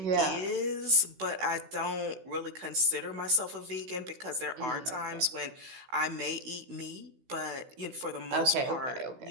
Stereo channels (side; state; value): left; late; 16 ms